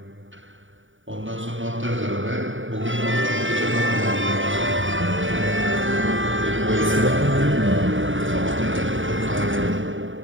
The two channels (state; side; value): late; left; 0.57 ms